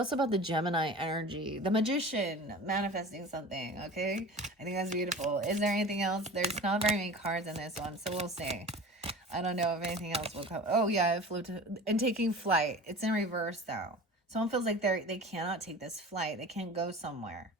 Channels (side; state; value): both; normal; correlation 0.37